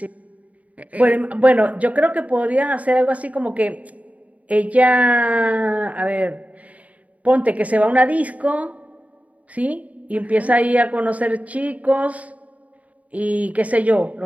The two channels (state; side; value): late; left; 0.070 ms